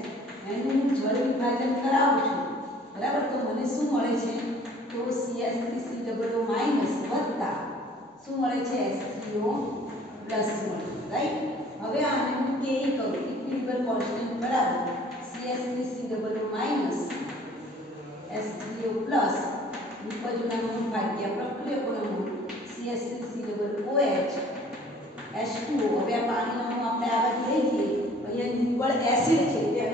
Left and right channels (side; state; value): both; normal; correlation 0.53